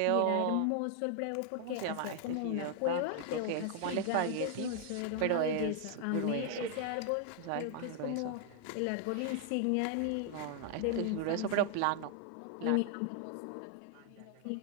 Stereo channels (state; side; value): different; both; correlation 0.00